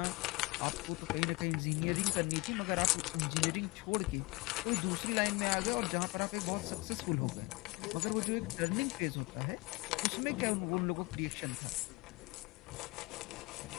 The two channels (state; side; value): quieter; right; 23.6 dB